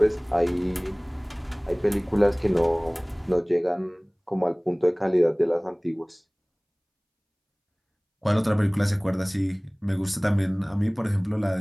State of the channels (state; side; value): identical; both; correlation 1.00